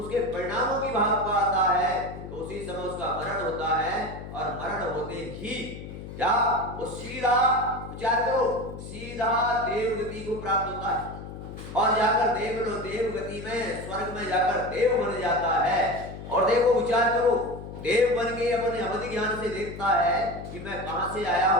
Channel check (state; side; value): noise; left; hum, 11 dB below the sound